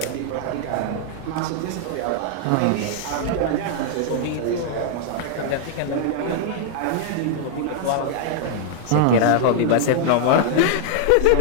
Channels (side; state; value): both; different; correlation 0.00